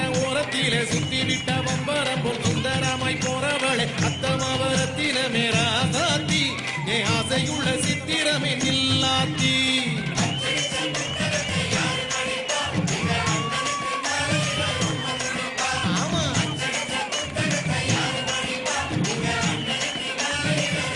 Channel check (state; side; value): identical; both; correlation 1.00